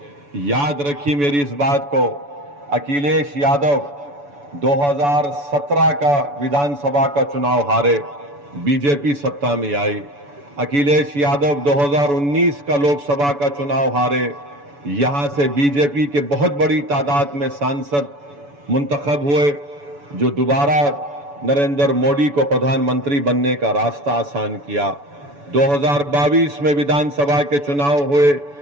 याद रखिए मेरी इस बात को, अखिलेश यादव 2017 का विधानसभा का चुनाव हारे, बीजेपी सत्ता में आई। अखिलेश यादव 2019 का लोकसभा का चुनाव हारे, यहां से बीजेपी के बहुत बड़ी तादाद में सांसद मुंतखब हुए, जो दोबारा नरेंद्र मोदी को प्रधानमंत्री बनने का रास्ता आसान किया। 2022 में विधानसभा के चुनाव हुए,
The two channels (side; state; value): left; late; 7.0 ms